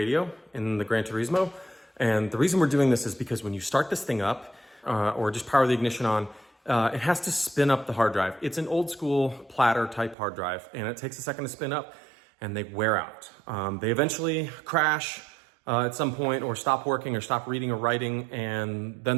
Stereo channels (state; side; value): drops out; left; at 10.2 s